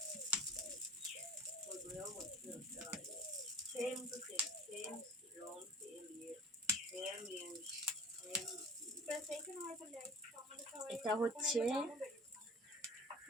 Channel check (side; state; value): both; normal; correlation 0.41